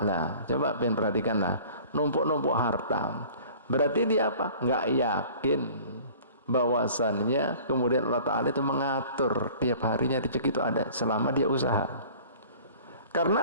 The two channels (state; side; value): inverted; both; correlation -0.47